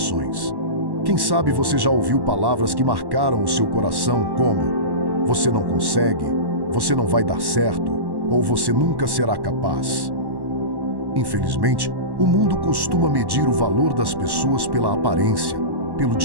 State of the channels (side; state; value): left; late; 1.1 ms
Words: Quem sabe você já ouviu palavras que marcaram o seu coração como: você não consegue, você não vai dar certo, ou você nunca será capaz. Infelizmente, o mundo costuma medir o valor das pessoas pela aparência, pelo